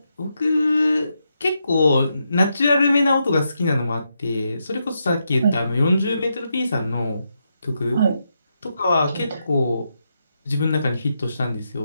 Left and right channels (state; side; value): inverted; both; correlation -0.83